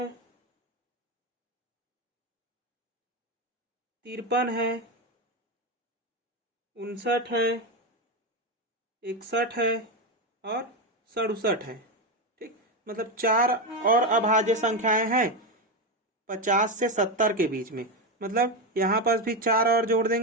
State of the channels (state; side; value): normal; both; correlation 0.11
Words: 53 है, 59 है, 61 है, और 67 है। ठीक, मतलब 4 और अभाज्य संख्याएं हैं 50 से 70 के बीच में। मतलब यहाँ पर भी 4 और जोड़